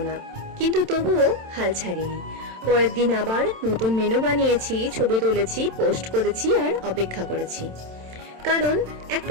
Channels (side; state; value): left; late; 27 ms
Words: না, কিন্তু তবুও হাল ছাড়িনি। পরের দিন আবার নতুন মেনু বানিয়েছি, ছবি তুলেছি, পোস্ট করেছি আর অপেক্ষা করেছি। কারণ